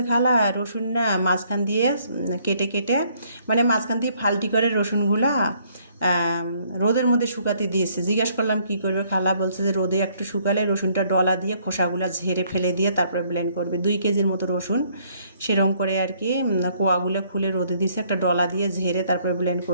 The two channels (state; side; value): inverted; both; correlation -0.66